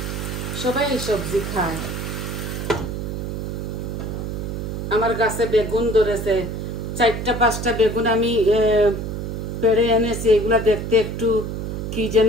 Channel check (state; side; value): noise; right; hum, 4 dB below the sound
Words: সবাই এই সবজি খায়। আমার গাছে বেগুন ধরেছে, 4টা-5টা বেগুন আমি পেড়ে এনেছি। এগুলা দেখতে একটু কি